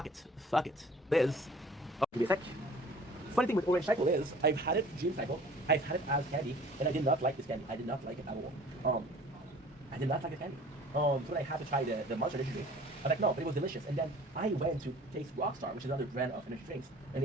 it. Liz. Oh, give me a sec. Funny thing with Orange Cycle is, I've had it Dream Cycle, I've had it as candy, and I did not like this candy. I did not like it at all. I did not like the candy. So when I had to try the Monster Energy drink, I was like, no, but it was delicious. And then I went to taste Rockstar, which is another brand of energy drinks, and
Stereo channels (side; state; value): both; normal; correlation 0.48